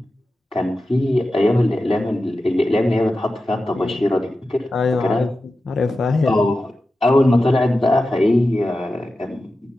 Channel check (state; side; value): normal; both; correlation 0.93